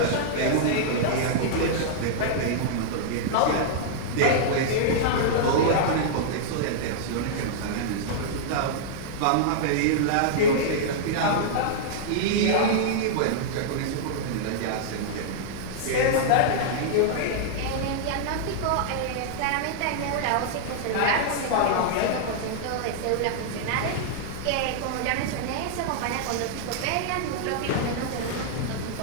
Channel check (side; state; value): both; different; correlation -0.02